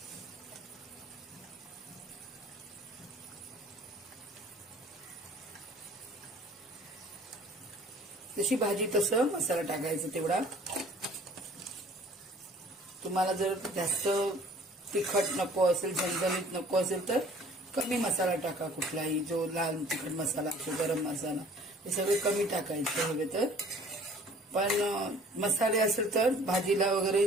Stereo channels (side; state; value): both; normal; correlation 0.52